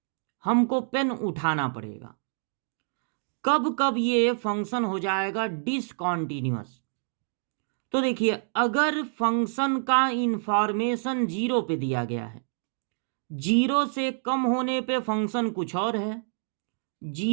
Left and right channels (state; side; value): silent; left; digital silence